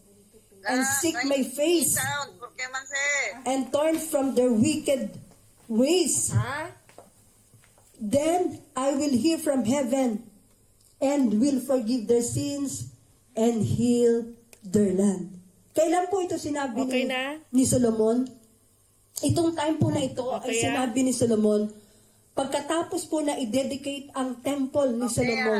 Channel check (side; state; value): both; identical; correlation 1.00